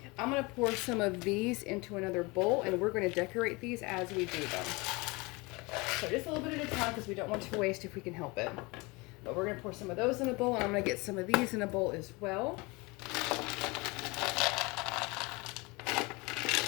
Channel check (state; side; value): quieter; right; 25.4 dB